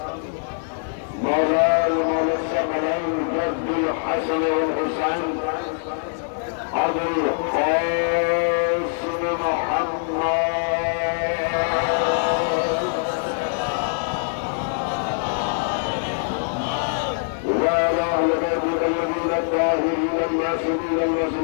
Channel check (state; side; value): silent; right; 63 dB below the other